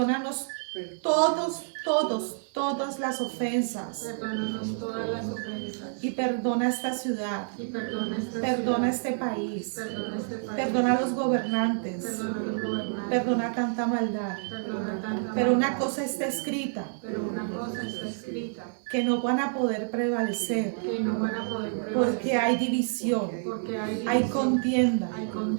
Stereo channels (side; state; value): left; silent; 59 dB below the other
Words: todas las ofensas. Y perdona esta ciudad. Perdona este país. Perdona a los gobernantes. Perdona tanta maldad. Pero una cosa está escrita, que no van a poder prevalecer, porque hay división, hay contienda,